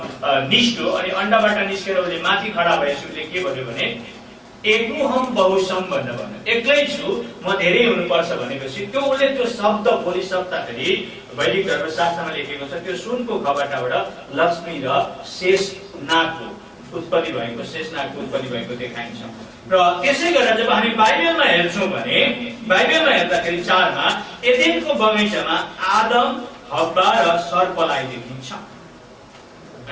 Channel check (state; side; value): identical; both; correlation 1.00